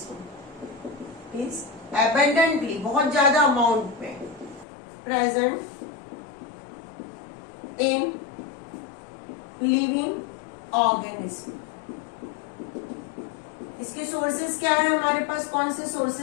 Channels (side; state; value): right; drops out; at 4.7 s